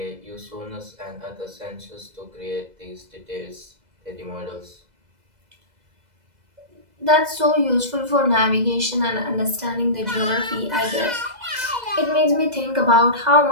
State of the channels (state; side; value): late; left; 2.0 ms